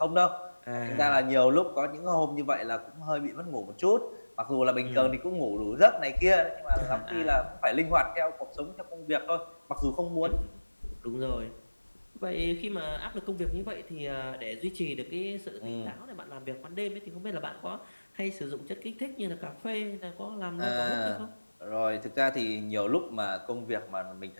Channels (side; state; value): both; inverted; correlation -1.00